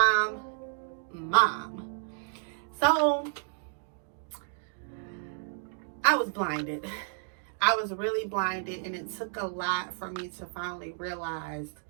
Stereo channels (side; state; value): left; silent; digital silence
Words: So I was blinded. I was really blinded, and it took a lot for me to finally realize